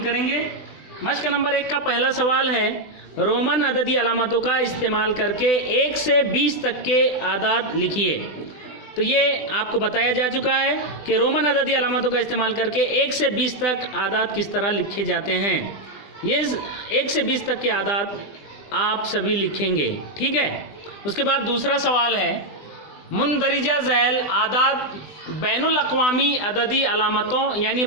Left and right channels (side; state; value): right; late; 20 ms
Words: मश्क नंबर 1 का पहला सवाल है, रोमन अददी अलामतों का इस्तेमाल करके 1 से 20 तक के आदाद लिखिए। तो ये आपको बताया जा चुका है कि रोमन अददी अलामतों का इस्तेमाल करके 1 से 20 तक आदाद किस तरह लिखे जाते हैं। ये 1 से 20 तक के आदाद आप सभी लिखेंगे, ठीक है। उसके बाद दूसरा सवाल है, मुंदरिजा झैल आदाद बैनुल अक़वामी अददी अलामतों यानी